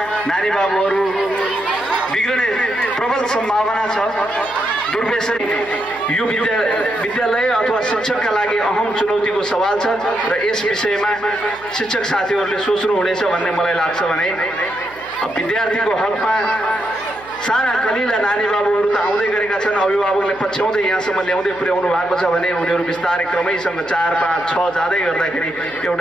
नानी बाबुहरू बिग्रने प्रबल सम्भावना छ। दुर्व्यसन यो विद्यालय अथवा शिक्षकका लागि अहम चुनौतीको सवाल छ र यस विषयमा शिक्षक साथीहरूले सोच्नुहुनेछ भन्ने मलाई लाग्छ। भने विद्यार्थीको हकमा साना कलिला नानी बाबुहरू त आउँदै गरेका छन्, अभिभावकले पछ्याउँदै यहाँसम्म ल्याउँदै पुर्याउनु भएको छ भने उनीहरू बिस्तारै क्रमैसँग 4, 5, 6 जाँदै गर्दाखेरि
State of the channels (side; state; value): right; noise; hum, 23 dB below the sound